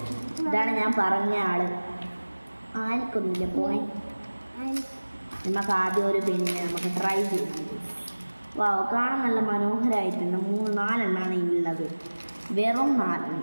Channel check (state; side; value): inverted; both; correlation -1.00